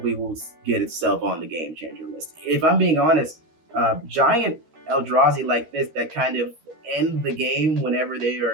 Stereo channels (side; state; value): left; late; 13 ms